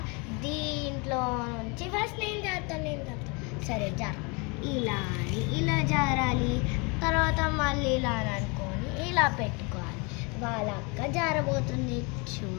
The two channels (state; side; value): quieter; right; 30.3 dB